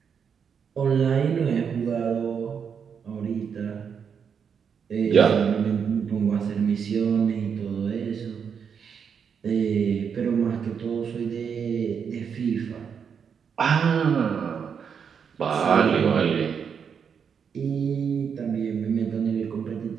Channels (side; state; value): left; quieter; 6.9 dB